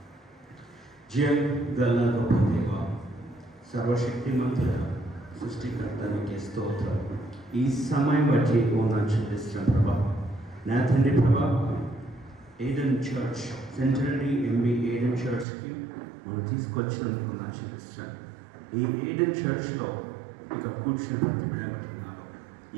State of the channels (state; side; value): drops out; left; at 15.5 s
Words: జయం గల గొప్ప దేవ, సర్వశక్తిమంతుడ, సృష్టికర్త నీకే స్తోత్రం. ఈ సమయం బట్టి వందనాలు చెల్లిస్తున్నాం ప్రభా. నా తండ్రి ప్రభా, ఏడెన్ చర్చ్ సెంటరీ ఎంబీ ఏడెన్ చర్చ్కి మనం తీసుకొచ్చినందుకు వందనాలు చెల్లిస్తున్నాం. ఈ ఏడెన్ చర్చ్లో ఇక కూర్చుని ప్రతి బిడ్డబట్టుకున్నాను.